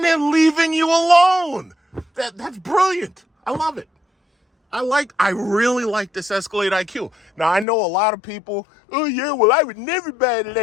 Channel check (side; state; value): right; drops out; at 7.7 s